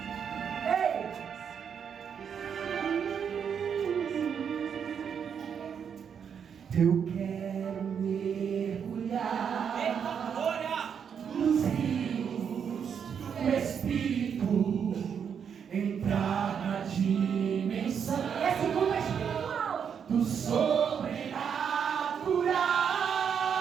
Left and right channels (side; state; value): left; quieter; 7.4 dB